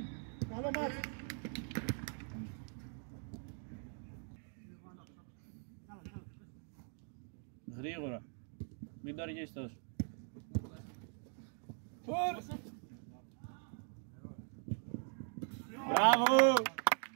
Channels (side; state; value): left; silent; 50 dB below the other